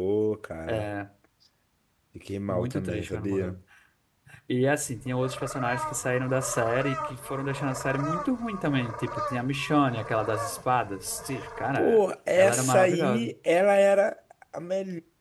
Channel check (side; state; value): both; identical; correlation 1.00